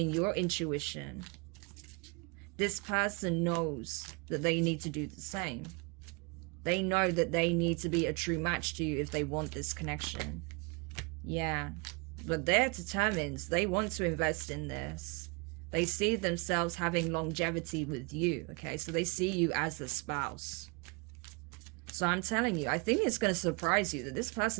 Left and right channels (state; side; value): quieter; left; 30.4 dB